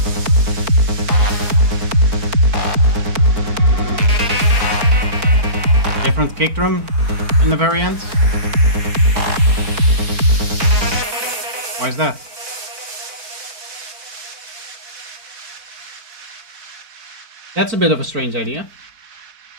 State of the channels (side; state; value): left; late; 4.4 ms